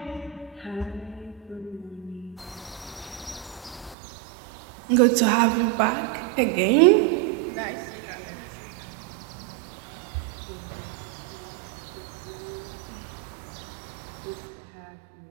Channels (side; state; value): left; drops out; at 4.0 s